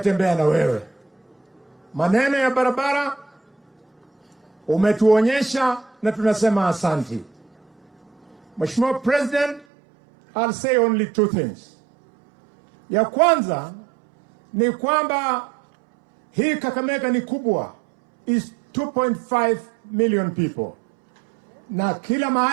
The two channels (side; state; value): left; drops out; at 9.7 s